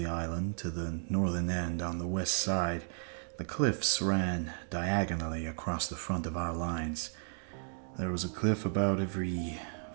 island to the northern end on the west side, the cliffs ran diagonally across the front of our lines. There was a cliff about every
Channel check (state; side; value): silent; left; 55 dB below the other